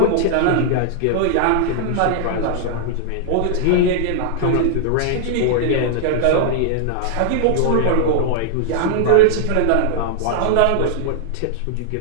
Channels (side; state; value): both; different; correlation -0.01